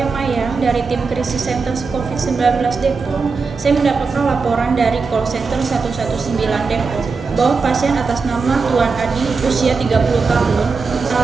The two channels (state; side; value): quieter; left; 4.7 dB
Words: Maya dari tim krisis center COVID-19 Depok. Saya mendapatkan laporan dari call center 119 Depok bahwa pasien atas nama Tuan Adi usia 30 tahun,